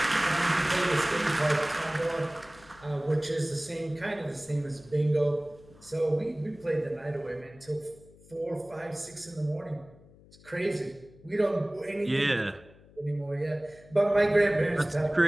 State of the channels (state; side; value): noise; left; hum, 24 dB below the sound